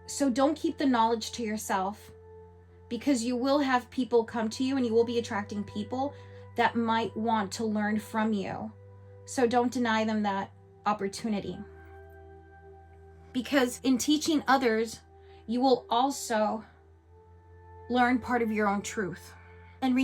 So don't keep the knowledge to yourself, because you will have people come to you and you will be attracting people that might want to learn from you. So don't deny them that opportunity. Because in teaching others, you will also learn part of your own truth. And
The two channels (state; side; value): identical; both; correlation 1.00